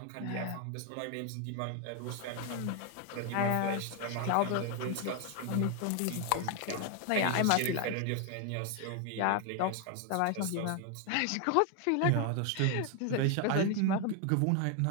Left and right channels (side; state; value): both; different; correlation 0.01